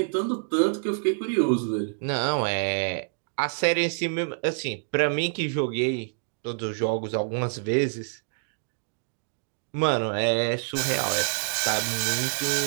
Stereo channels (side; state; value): left; silent; digital silence